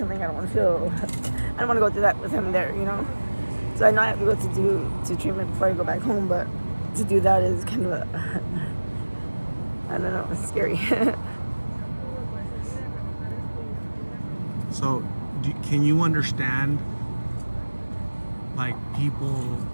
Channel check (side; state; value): both; inverted; correlation -1.00